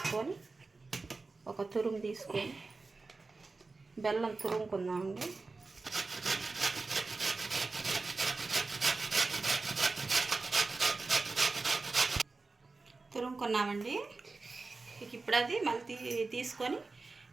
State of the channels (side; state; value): left; quieter; 3.8 dB